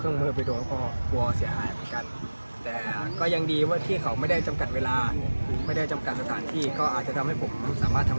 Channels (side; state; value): both; inverted; correlation -1.00